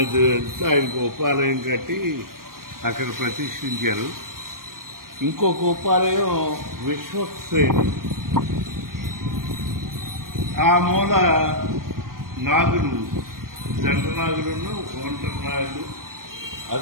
ఆయనకు ఉపాలయం కట్టి అక్కడ ప్రతిష్ఠించారు. ఇంకొక ఉపాలయం విశ్వక్సేన్, ఆ మూల నాగులు, జంట నాగులను, ఒంటరి నాగులు,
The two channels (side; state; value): left; late; 0.92 ms